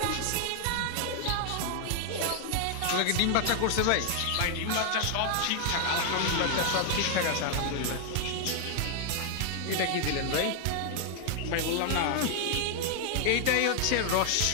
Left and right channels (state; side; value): different; both; correlation 0.00